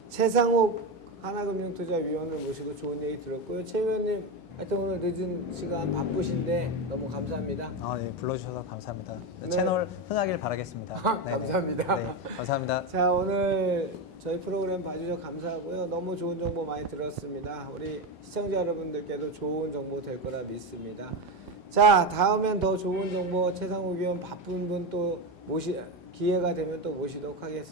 최상욱 하나금융투자위원을 모시고 좋은 얘기 들었고요. 최 의원님 하여튼 오늘 늦은 시간 바쁘신데 너무 감사합니다. 네, 불러주셔서 감사합니다. 네. 채널 흥하길 바라겠습니다. 네네. 감사합니다. 네, 감사합니다. 자, 오늘 저희 프로그램 봐주셔서 감사하고요. 너무 좋은 정보 많이 들었습니다. 우리 시청자 여러분들께도 좋은 정보 될 거라 믿습니다. 자, 다음엔 더 좋은 정보 최상욱 의원 바쁜 분 또 기회가 되면 또 모시도록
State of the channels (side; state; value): both; normal; correlation 0.15